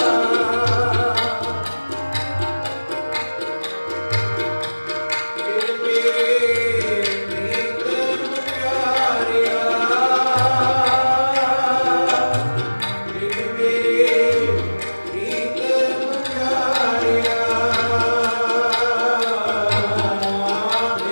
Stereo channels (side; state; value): both; inverted; correlation -1.00